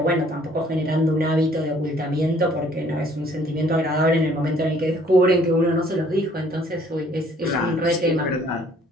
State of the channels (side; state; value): both; normal; correlation 0.60